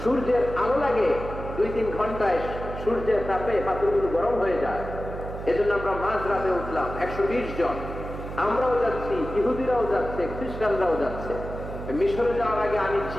সূর্যের আলো লাগে, 2-3 ঘন্টায় সূর্যের তাপে পাথরগুলো গরম হয়ে যায়। এজন্য আমরা মাঝ রাতে উঠলাম, 120 জন। আমরাও যাচ্ছি, ইহুদিরাও যাচ্ছে, খ্রিস্টানরাও যাচ্ছে। মিশরে যাওয়ার আগে আমি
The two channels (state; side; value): noise; right; hum, 9 dB below the sound